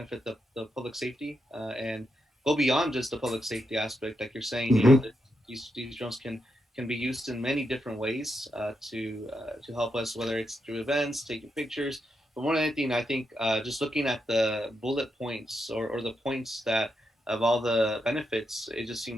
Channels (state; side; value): normal; both; correlation 0.84